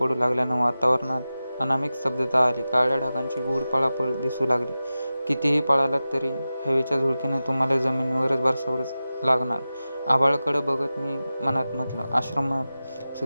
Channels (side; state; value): both; inverted; correlation -0.95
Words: लागल्यानं वातावरणात अनामिक स्तब्धता आली. काळ्या ढगांची गूढ पळापळ दिसू लागली. कितीही पळालात तरी हवेच्या झुळकीनं तुम्हाला जमिनीवरच बसावंच लागणार. आभाळाकडं बघत मी मनात म्हटलं, आश्रमात